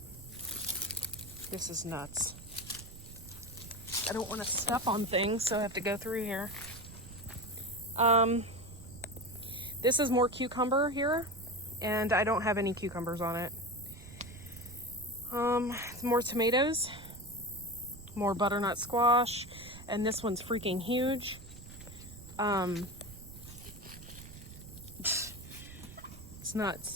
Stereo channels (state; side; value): noise; right; rumble, 15 dB below the sound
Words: This is nuts. I don't want to step on things, so I have to go through here. This is more cucumber here, and I don't have any cucumbers on it. More tomatoes, more butternut squash, and this one's freaking huge. It's